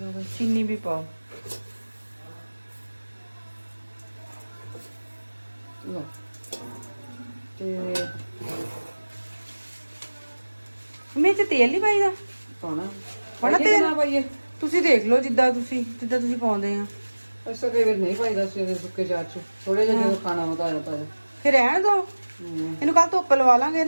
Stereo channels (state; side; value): inverted; both; correlation -1.00